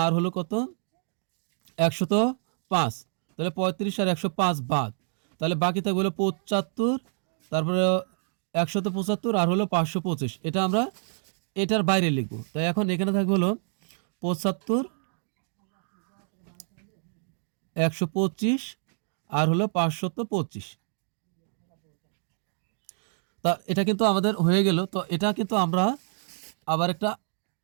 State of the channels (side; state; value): left; silent; digital silence